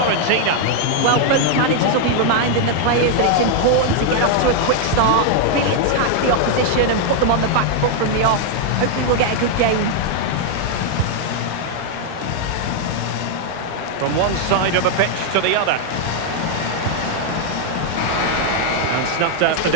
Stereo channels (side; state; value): both; different; correlation 0.00